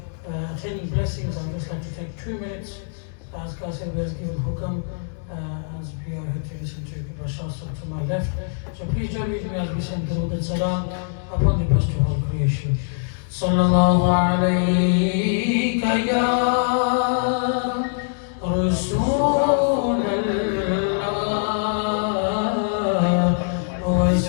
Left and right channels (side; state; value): right; silent; digital silence